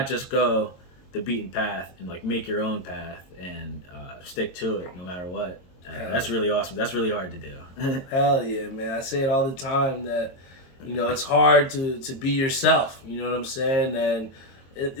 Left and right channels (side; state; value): right; late; 22 ms